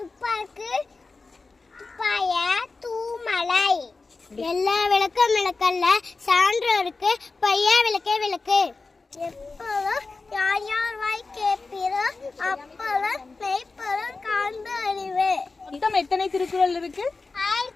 துப்பாய தூமலை எல்லா விளக்கும் விளக்கல்ல சான்றோருக்கு பையா விளக்கே விளக்கு எப்போதும் யார் யார் வாய் கேட்பீரோ அப்போதும் மெய்ப்பொருள் காண்பு அறிவு. மொத்தம் எத்தனை திருக்குறள் இருக்கு?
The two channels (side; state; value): right; quieter; 3.9 dB